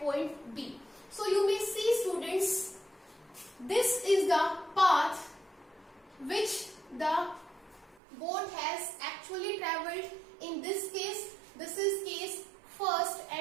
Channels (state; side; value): drops out; left; at 8.0 s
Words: B. So you may see, students, this is the path which the boat has actually travelled. In this case, this is case first